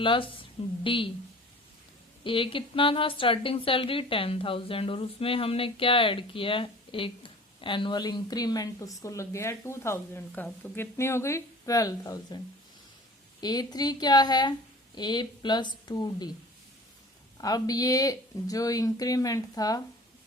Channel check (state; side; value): normal; both; correlation 0.44